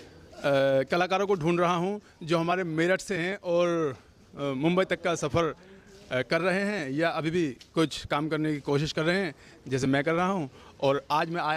कलाकारों को ढूंढ रहा हूँ जो हमारे मेरठ से हैं और मुंबई तक का सफ़र कर रहे हैं या अभी भी कुछ काम करने की कोशिश कर रहे हैं जैसे मैं कर रहा हूं। और आज मैं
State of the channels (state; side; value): identical; both; correlation 1.00